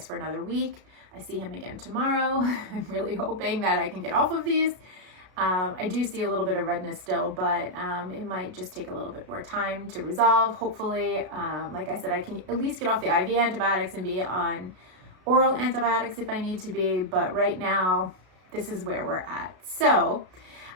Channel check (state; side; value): late; left; 32 ms